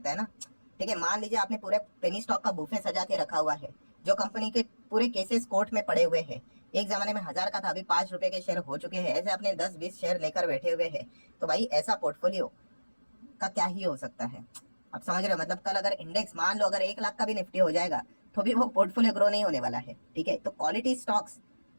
है ना, ठीक है। मान लीजिए आपने पूरे पेनी स्टॉक का बुफे सजा के रखा हुआ है, जो कंपनी के पूरे केसेस कोर्ट में पड़े हुए हैं, एक जमाने में 1000 का था, अभी 5 रुपए के शेयर हो चुके हैं, ऐसे आपने 10-20 शेयर लेकर बैठे हुए हैं, तो भाई ऐसा पोर्टफोलियो का क्या ही हो सकता है, आप समझ रहे हो। मतलब कल अगर इंडेक्स मान लो अगर 1 लाख का भी निफ्टी हो जाएगा तो भी वो पोर्टफोलियो ग्रो नहीं होने वाला है, ठीक है। तो क्वालिटी स्टॉक्स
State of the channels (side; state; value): both; inverted; correlation -1.00